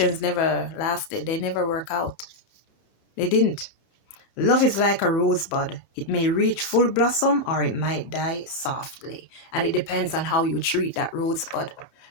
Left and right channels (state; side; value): late; right; 31 ms